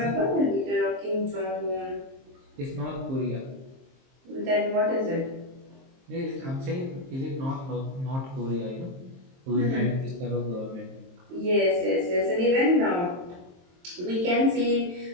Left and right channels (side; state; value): left; late; 23 ms